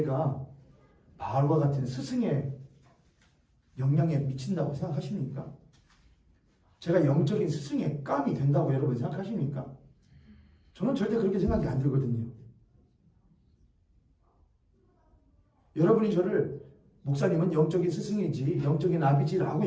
바울과 같은 스승의 영향에 미친다고 생각하십니까? 제가 영적인 스승의 깜이 된다고 여러분 생각하십니까? 저는 절대 그렇게 생각이 안 들거든요. 여러분이 저를 목사님은 영적인 스승이지 영적인 아비지라고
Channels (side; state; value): both; identical; correlation 1.00